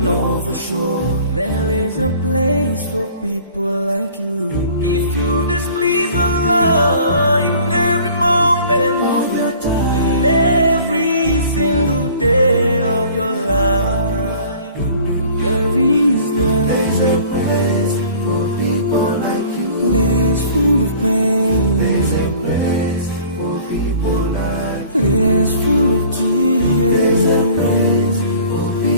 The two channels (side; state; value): both; inverted; correlation -0.49